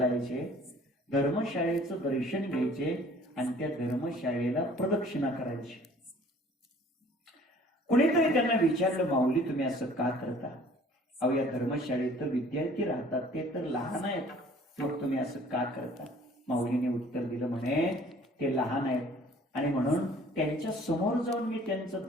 धर्मशाळेचं दर्शन घ्यायचे आणि त्या धर्मशाळेला प्रदक्षिणा करायची. कुणीतरी त्यांना विचारलं माऊली तुम्ही असं का करता? अहो या धर्मशाळेत तर विद्यार्थी राहतात, ते तर लहान आहेत, मग तुम्ही असं का करता? माऊलीने उत्तर दिलं म्हणे ते लहान आहेत आणि म्हणून त्यांच्या समोर जाऊन मी त्यांचं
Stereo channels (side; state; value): both; normal; correlation 0.53